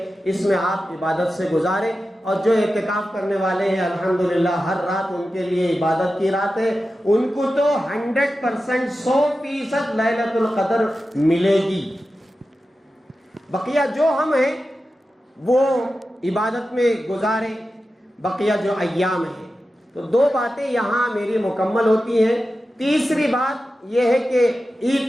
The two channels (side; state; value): both; normal; correlation 0.92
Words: اس میں آپ عبادت سے گزاریں، اور جو اعتکاف کرنے والے ہیں الحمدللہ ہر رات ان کے لیے عبادت کی رات ہے، ان کو تو 100% 100% لیلۃ القدر ملے گی۔ بقیہ جو ہم ہیں وہ عبادت میں گزاریں، بقیہ جو ایام ہیں۔ تو 2 باتیں یہاں میری مکمل ہوتی ہیں۔ تیسری بات یہ ہے کہ